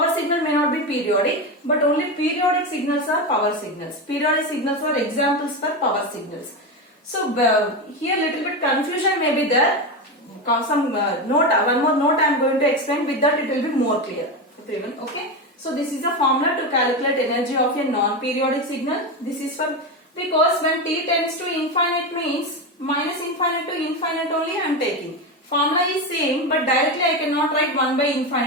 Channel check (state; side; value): normal; both; correlation 0.16